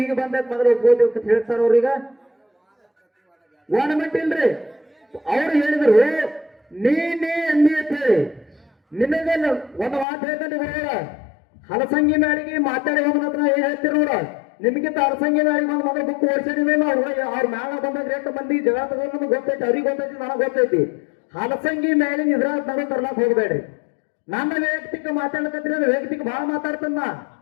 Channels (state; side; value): drops out; right; at 10.1 s